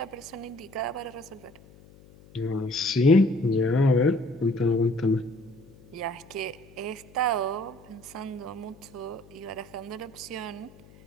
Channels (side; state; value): left; noise; hum, 24 dB below the sound